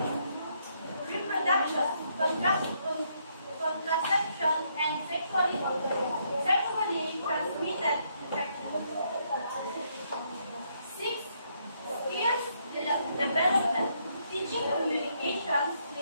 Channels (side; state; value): both; inverted; correlation -0.74